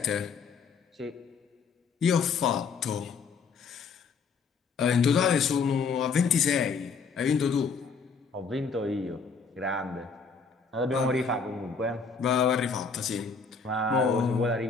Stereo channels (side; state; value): right; quieter; 5.2 dB